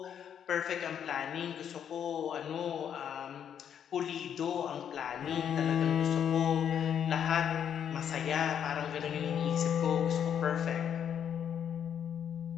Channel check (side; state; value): right; quieter; 8.7 dB